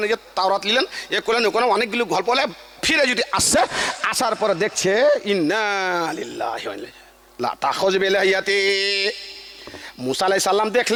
যে তাওরাত নিলেন, এ করলেন, ওখানে অনেকগুলো গল্প হলে ফিরে যদি আসছে, আসার পরে দেখছে ইন্না লিল্লাহি ওয়া ইন্না লা তাখুজ বিলাহিয়াতি। মুসা আলাইহিস সালাম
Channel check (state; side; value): identical; both; correlation 1.00